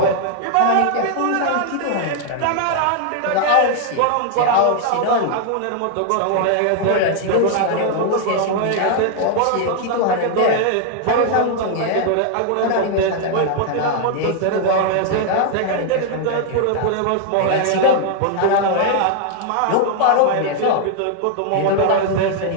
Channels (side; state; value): both; different; correlation 0.00